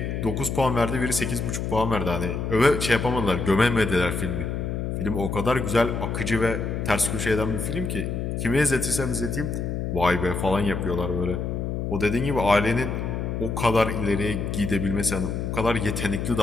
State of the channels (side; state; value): left; noise; hum, 2 dB below the sound